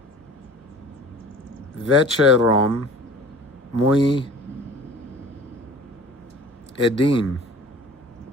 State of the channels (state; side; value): normal; both; correlation 0.44